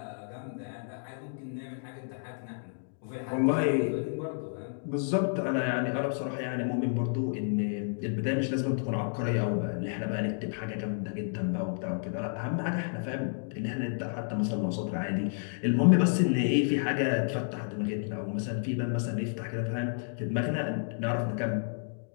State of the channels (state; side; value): silent; right; digital silence